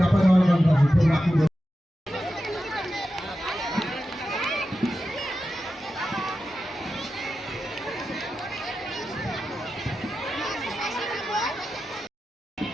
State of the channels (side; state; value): both; normal; correlation 0.91